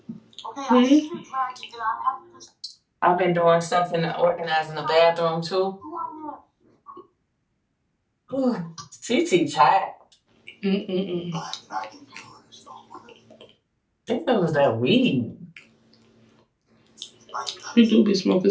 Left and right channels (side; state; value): both; identical; correlation 1.00